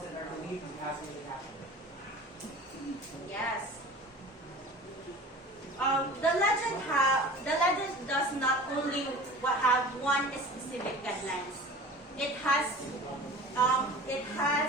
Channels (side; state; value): both; normal; correlation 0.40